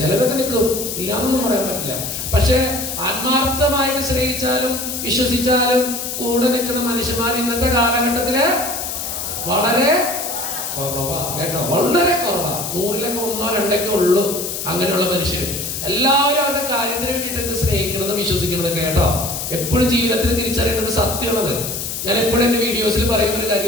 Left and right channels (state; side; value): noise; left; hiss, 5 dB below the sound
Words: ചിലരൊക്കെ നിൽക്കും, ഇല്ലാന്നൊന്നും പറയാൻ പറ്റില്ല. പക്ഷെ ആത്മാർത്ഥമായിട്ട് സ്നേഹിച്ചാലും വിശ്വസിച്ചാലും കൂടെ നിൽക്കുന്ന മനുഷ്യന്മാർ ഇന്നത്തെ കാലഘട്ടത്തില് വളരെ കുറവാ. കേട്ടോ, വളരെ കുറവാ. 100-ലൊക്കെ 1-2 ഉള്ളൂ അങ്ങനെയുള്ള മനുഷ്യർ. എല്ലാവരും അവരുടെ കാര്യത്തിന് വേണ്ടിയിട്ട് സ്നേഹിക്കുന്നത് വിശ്വസിക്കുന്നത്. കേട്ടോ, എപ്പോഴും ജീവിതത്തിൽ തിരിച്ചറിയേണ്ടത് സത്യമുള്ളത്. ഞാൻ എപ്പോഴും എന്റെ വീഡിയോസിൽ പറയുന്ന ഒരു